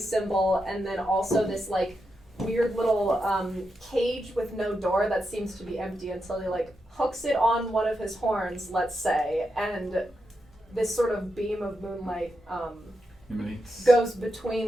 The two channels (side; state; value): both; normal; correlation 0.86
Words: and then also this like weird little cage with no door that seems to be empty until he like hooks it on one of his horns, let's say, and this sort of beam of moonlight goes